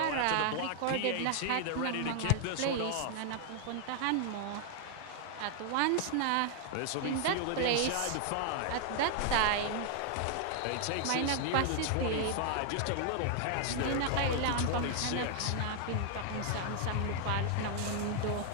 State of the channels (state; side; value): different; both; correlation 0.00